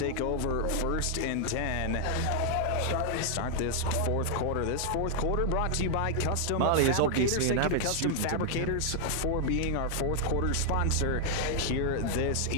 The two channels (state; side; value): different; both; correlation 0.00